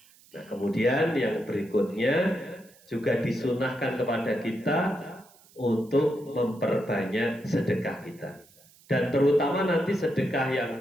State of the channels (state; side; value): noise; right; hiss, 27 dB below the sound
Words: Nah, kemudian yang berikutnya juga disunahkan kepada kita untuk memperbanyak sedekah kita. Dan terutama nanti sedekah yang